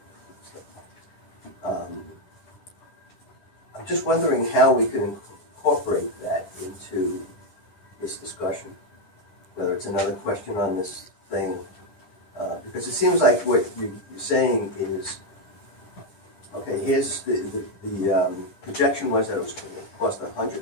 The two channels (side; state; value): right; late; 9.9 ms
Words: I'm just wondering how we can incorporate that into this discussion. Whether it's another question on this thing, because it seems like what you're saying is, okay, here's the projection was that it was going to cost